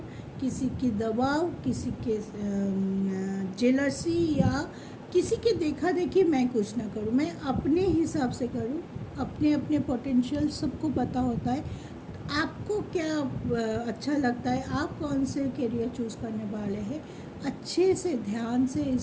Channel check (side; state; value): both; identical; correlation 1.00